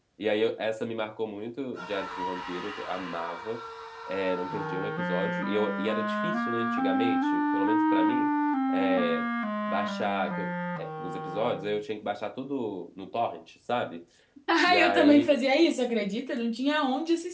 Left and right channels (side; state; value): both; identical; correlation 1.00